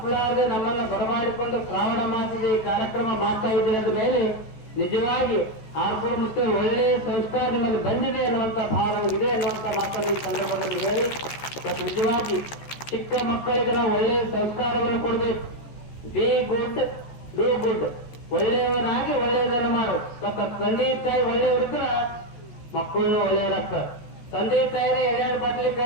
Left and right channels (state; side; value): late; right; 14 ms